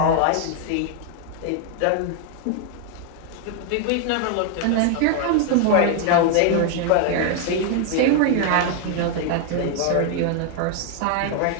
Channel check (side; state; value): both; different; correlation 0.00